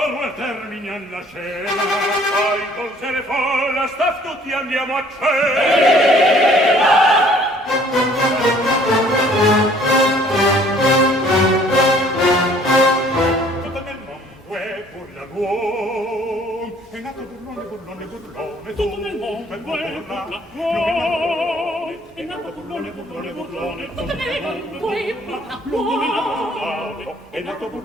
e terminian la scena. Poi con se ne folla staff tutti andiamo a cena. Tutto nel mondo è burlagone, è nato burlone, burlone, burlone. Tutto nel mondo è burlagone, è nato burlone, burlone, burlone. Tutto nel mondo è burlagone, è nato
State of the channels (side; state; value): both; normal; correlation 0.57